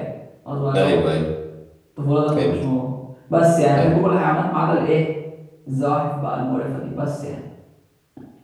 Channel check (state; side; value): identical; both; correlation 1.00